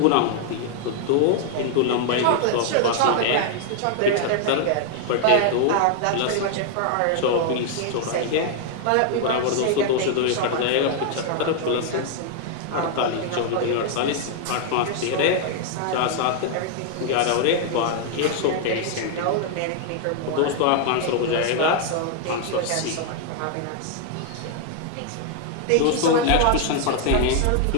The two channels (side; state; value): both; different; correlation 0.00